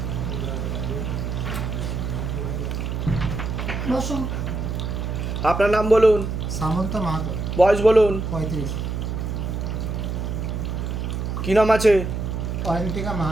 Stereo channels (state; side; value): noise; right; hum, 3 dB below the sound